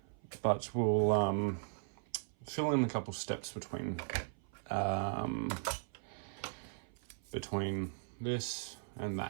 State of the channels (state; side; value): silent; left; 52 dB below the other